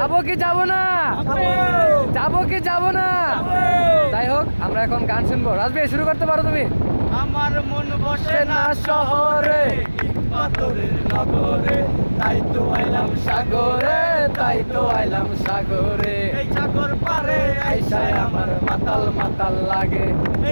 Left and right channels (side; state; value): both; inverted; correlation -1.00